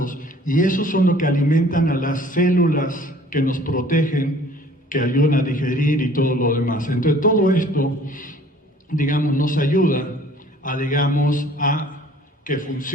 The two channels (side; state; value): both; normal; correlation 0.53